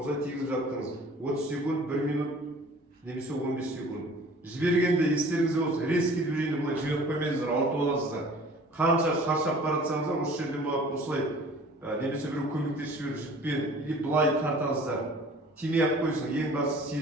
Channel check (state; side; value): normal; both; correlation 0.48